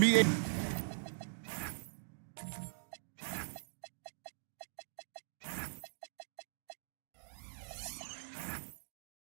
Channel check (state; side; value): silent; left; digital silence